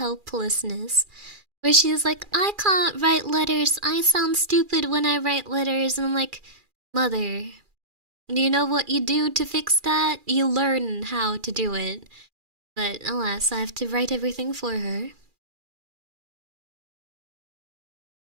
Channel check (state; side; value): late; left; 2.4 ms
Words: Where she's like, I can't write letters. I sound stupid when I write letters. And I'm like, Mother, you know what you do to fix that? You learn how to do it. But alas, I have to write everything for her.